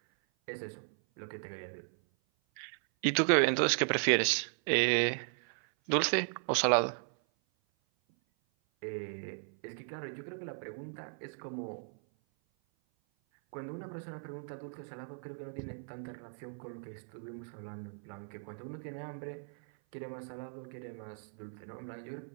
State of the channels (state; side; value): silent; left; 54 dB below the other